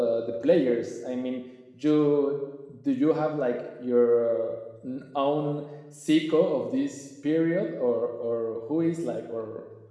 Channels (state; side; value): identical; both; correlation 1.00